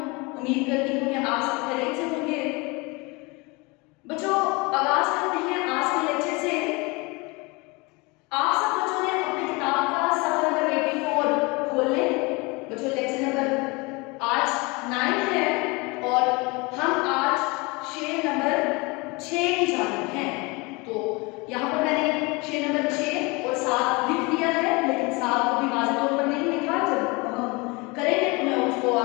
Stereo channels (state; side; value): quieter; right; 26.6 dB